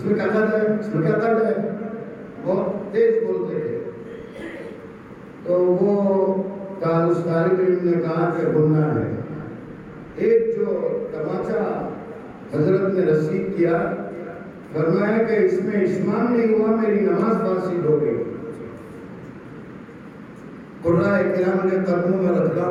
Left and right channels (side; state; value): both; identical; correlation 1.00